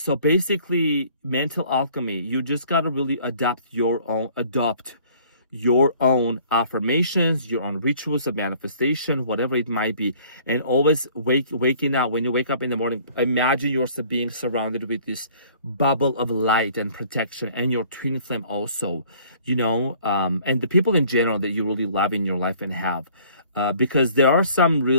basically, mental alchemy, you just got to really adopt your own affirmations, your own rituals of manifestation, whatever it might be. And always waking up, when you wake up in the morning, imagine yourself being surrounded with this bubble of light and protection, and your twin flame also, you know, and the people in general that you really love in your life and have. Because there are some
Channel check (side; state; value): both; inverted; correlation -0.55